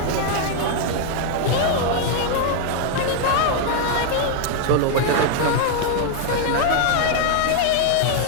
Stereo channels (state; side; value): different; both; correlation 0.00